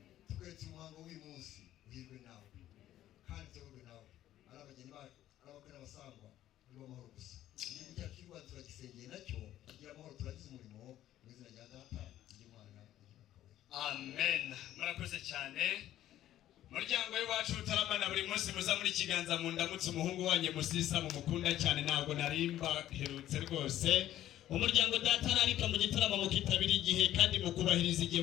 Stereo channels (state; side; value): quieter; right; 13.0 dB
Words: twese umuhango w'uyu munsi uhirwe nawe kandi tuyoborwe nawe ari abageni bacu ari abakwe n'abasangwa nibo amahoro gusa igihugu cyacu cy'u Rwanda turagisengeye nacyo kigira amahoro turagize umurimo mu izina rya data ry'Imana amen. Murakoze cyane muryango w'iwacu utaramana buri munsi muza muri kiganza mu ndamutse umuhungu wanjye Musisa mu mukunda cyane ntabwo narimba herutse rwose. Umuryango data narika mu gitaramo mukitabira igihe kandi mukubahiriza igihe